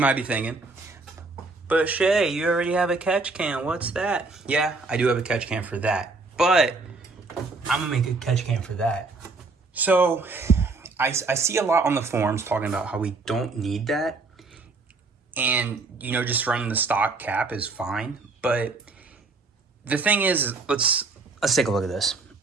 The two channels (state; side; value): quieter; left; 3.8 dB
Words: might be thinking, but Shay, you already have a catch can. What's that? Yeah, I do have a catch can for that, but I'm gonna make a catch can for that. So I see a lot on the forums talking about how we don't need that. And, just running the stock cap is fine. But the thing is, let's take a look at this.